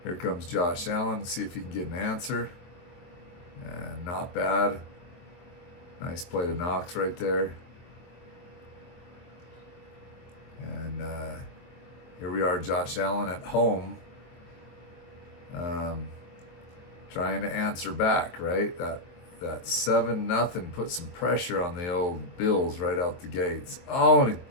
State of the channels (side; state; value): right; late; 23 ms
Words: here comes Josh Allen. See if he can get an answer. And not bad. Nice play to Knox right there. And here we are, Josh Allen at home. Trying to answer back, right? That 7-0 put some pressure on the old Bills right out the gates. Oh, and